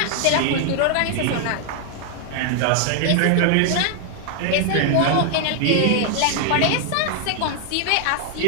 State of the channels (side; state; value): both; different; correlation 0.00